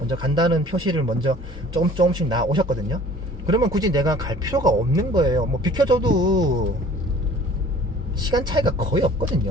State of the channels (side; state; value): both; normal; correlation 0.50